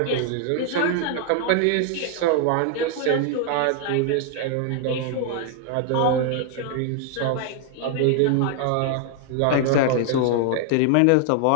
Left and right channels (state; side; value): different; both; correlation 0.00